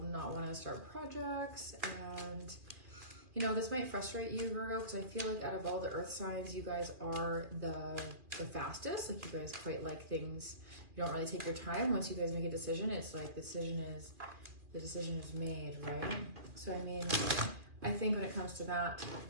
not want to start projects, and this might frustrate you, Virgo, because I feel like out of all the earth signs, you guys are the fastest. Like, you guys quite like things. You don't really take your time. Once you guys make a decision, it's like the decision is made, right? So I mean, I think when it comes to that,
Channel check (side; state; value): left; late; 2.3 ms